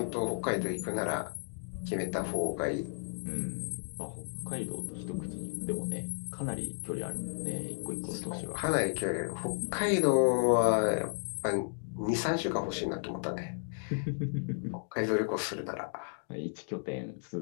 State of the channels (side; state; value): right; silent; digital silence